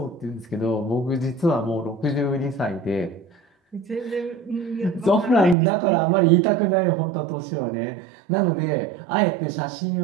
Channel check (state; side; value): drops out; left; at 5.6 s